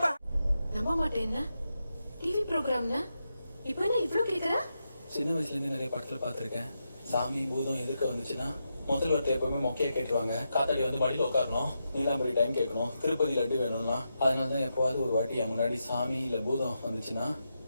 நம்ப மாட்டேன்னா டிவி ப்ரோக்ராம்னா இப்போ என்ன இவ்ளோ கேக்குற? சின்ன வயசுல இருந்து நிறைய படத்துல பாத்திருக்கேன். சாமி பூதம் எதிர்க்க வந்துச்சுன்னா முதல் வார்த்தை எப்பவுமே மொக்கையை கேட்டுருவாங்க. காத்தாடி வந்து வழியில் உட்காரணும், நீலாம்பரி டைம் கேட்கணும், திருப்பதி லட்டு வேணும்னா. அதனாலதான் எப்போவாது ஒரு வாட்டி என் முன்னாடி சாமி இல்ல பூதம் வந்துச்சுன்னா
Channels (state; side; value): inverted; both; correlation -0.86